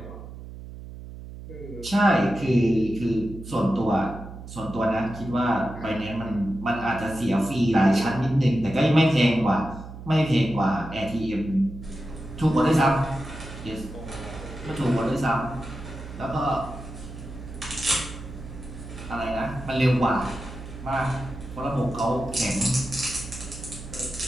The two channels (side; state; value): right; noise; hum, 13 dB below the sound